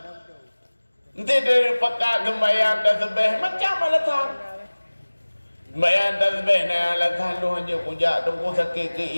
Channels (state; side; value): inverted; both; correlation -1.00